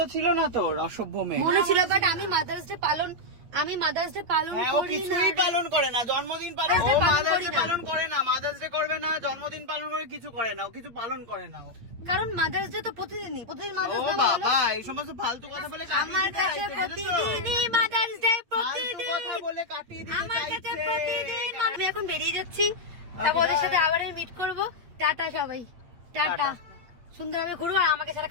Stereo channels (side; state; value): left; late; 8.7 ms